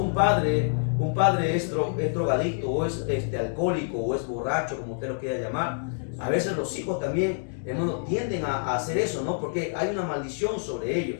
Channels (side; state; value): right; silent; digital silence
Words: un padre es drogadicto o es alcohólico o es borracho, como usted lo quiera llamar, a veces los hijos también, hermanos, tienden a hacer eso, ¿no? Porque hay una maldición sobre